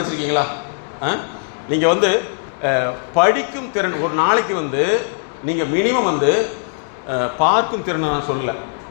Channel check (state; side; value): silent; right; digital silence